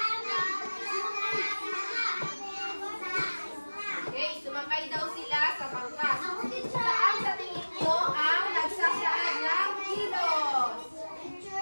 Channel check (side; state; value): both; inverted; correlation -1.00